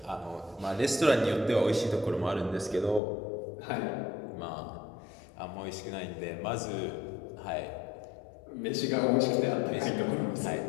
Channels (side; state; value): right; drops out; at 3.0 s